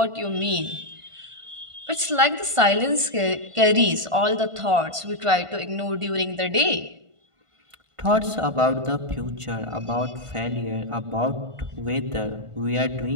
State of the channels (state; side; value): late; left; 1.5 ms